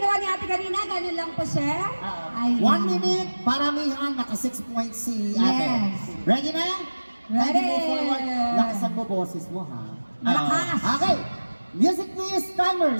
ni ate kanina, ganun lang po, sir. 1 minute, paramihan, naka 6 points si ate. Yes. Ready na? Ready. Ready move forward. Lakasan mo boses mo, ha? Malakas. Okay. Music please, timer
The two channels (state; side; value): inverted; both; correlation -1.00